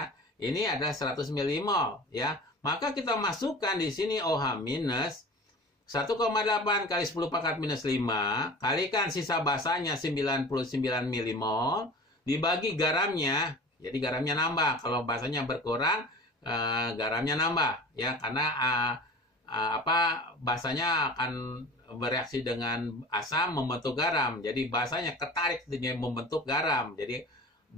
ini ada 100 milimol ya. Maka kita masukkan di sini OH minus 1,8 kali 10 pangkat minus 5 kalikan sisa basanya 99 milimol dibagi garamnya. Jadi garamnya nambah. Kalau basanya berkurang garamnya nambah ya, karena basanya akan bereaksi dengan asam membentuk garam. Jadi basanya ketarik dengan membentuk garam. Jadi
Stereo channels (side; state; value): both; normal; correlation 0.38